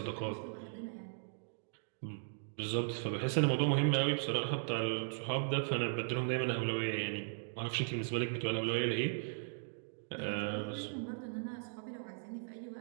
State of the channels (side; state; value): left; silent; digital silence